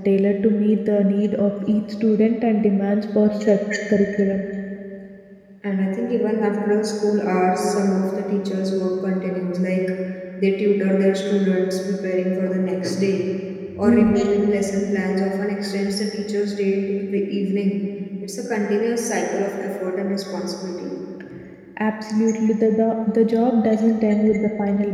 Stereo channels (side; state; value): both; identical; correlation 1.00